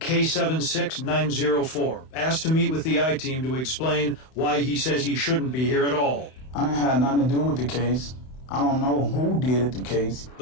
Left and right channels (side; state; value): right; late; 31 ms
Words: asked to meet with the I-Team to explain why he says he shouldn't be here at all. I didn't have nothing to do with the case. I don't know who did the case.